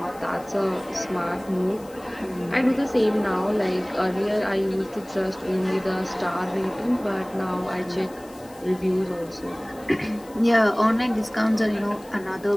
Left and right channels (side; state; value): left; noise; hiss, 24 dB below the sound